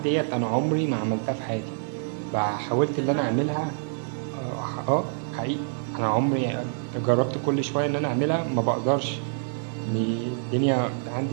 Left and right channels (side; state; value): left; silent; 61 dB below the other